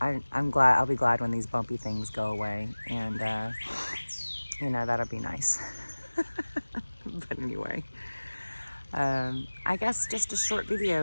I'm glad. I'll be glad when these bumpy things go away, and you know, that'll be nice. But anyway, I guess just a short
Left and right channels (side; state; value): both; inverted; correlation -1.00